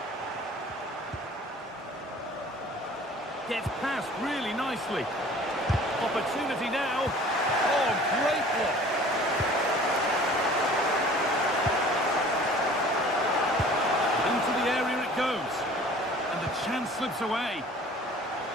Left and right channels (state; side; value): normal; both; correlation 0.48